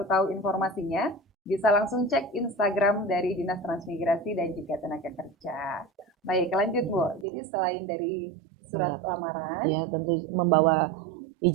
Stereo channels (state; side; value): drops out; left; at 7.2 s